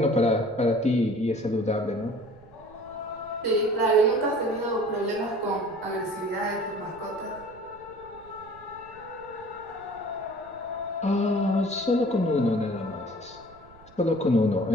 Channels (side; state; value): right; noise; rumble, 24 dB below the sound